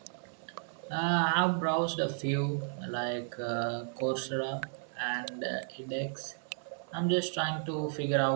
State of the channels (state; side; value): silent; left; 55 dB below the other